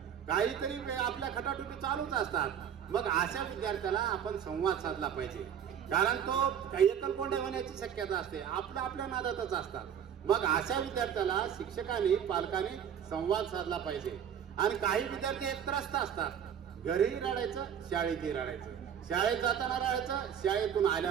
काहीतरी आपल्या खटाटोपी चालूच असतात. मग अशा विद्यार्थ्याला आपण संवाद साधला पाहिजे. कारण तो एकलकोंडे होण्याची शक्यता असते, आपल्या नादातच असतात. मग अशा विद्यार्थ्याला शिक्षकांनी पालकांनी संवाद साधला पाहिजे. आणि काही विद्यार्थी हे त्रस्त असतात, घरीही रडायचं, शाळेतही रडायचं, शाळेत जाताना रडायचं, शाळेतून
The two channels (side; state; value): left; quieter; 8.7 dB